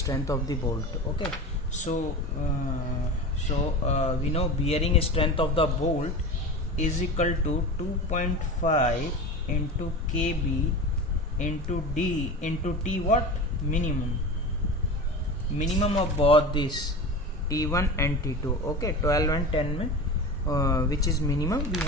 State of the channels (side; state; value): both; normal; correlation 0.30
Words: of the bolt. Okay. So we know bearing strength of the bolt is equal to 2.5 into kb into d into t what minimum of both this T1 and T2. Okay, 12 and 10 में which is minimum we